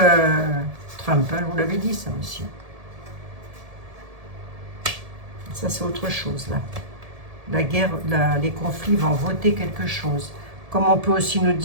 Trump, hein, je vous l'avais dit, ça aussi. Ça, c'est autre chose, là. La guerre, les conflits vont voter quelque chose. Comme on peut aussi nous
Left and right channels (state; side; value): late; left; 1.7 ms